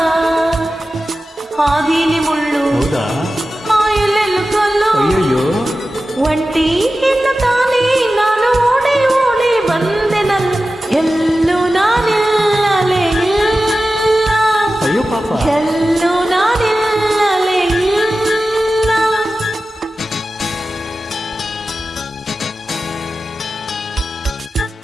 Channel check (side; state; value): both; normal; correlation 0.94